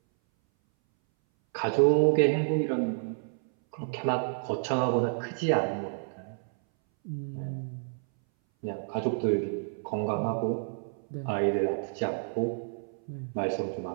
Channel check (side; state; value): left; silent; 58 dB below the other